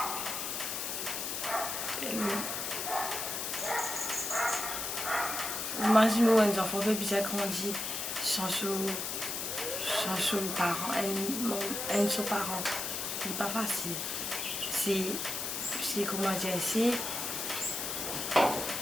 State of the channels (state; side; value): noise; left; hiss, 3 dB below the sound